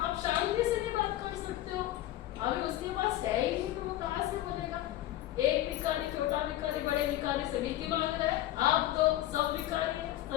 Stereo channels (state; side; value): quieter; right; 14.5 dB